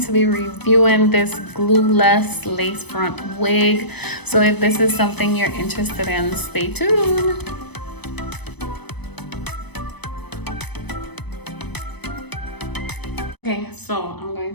to be reviewing this glueless lace front wig. So if this is something you're interested in, stay tuned. Okay, so I'm going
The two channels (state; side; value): late; right; 0.99 ms